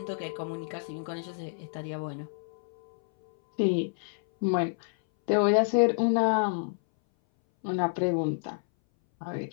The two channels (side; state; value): right; silent; 59 dB below the other